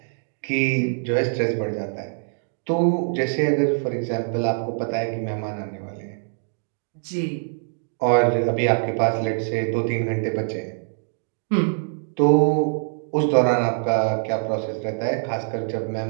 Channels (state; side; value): silent; left; digital silence